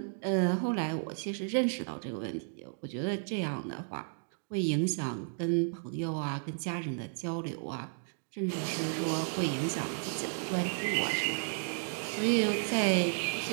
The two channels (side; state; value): left; silent; 56 dB below the other